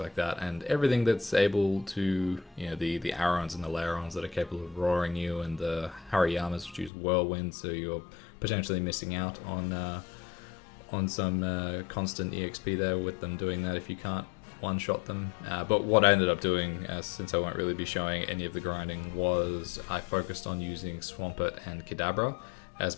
that, and everything that's able to, the Arons and the Lairons that are capable of roaring you, and the Hariyamas which use Whirlwind, so you're potentially missing out on some constant EXP there with them doing that if you can't one-shot them. But what I ended up doing, since I won't really be showing any of the grinding, was I focused on using Swampert and Kadabra as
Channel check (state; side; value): drops out; right; at 6.9 s